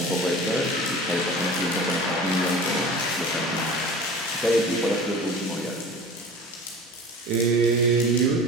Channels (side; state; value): both; normal; correlation 0.38